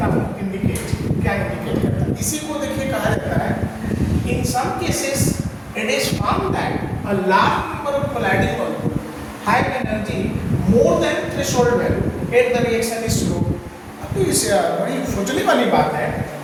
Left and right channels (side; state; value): both; identical; correlation 1.00